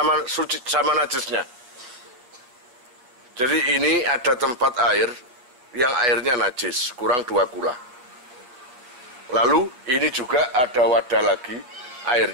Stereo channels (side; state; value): left; late; 8.1 ms